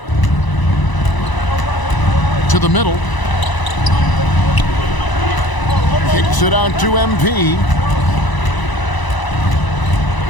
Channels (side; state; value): right; late; 1.0 ms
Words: To the middle. Kicks it out to MP.